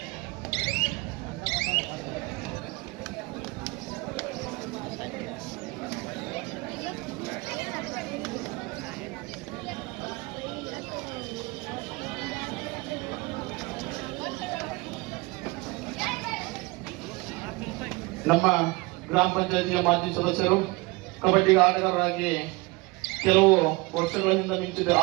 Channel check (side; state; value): left; quieter; 24.5 dB